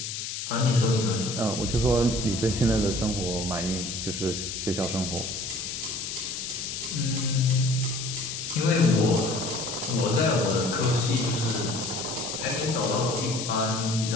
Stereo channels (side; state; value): left; noise; hiss, 5 dB below the sound